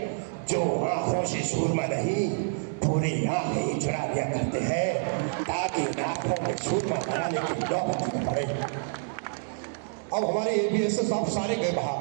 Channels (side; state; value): left; silent; digital silence